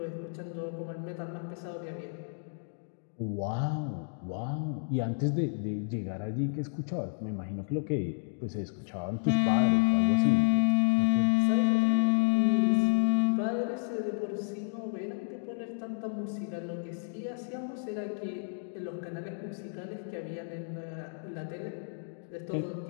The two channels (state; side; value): silent; right; digital silence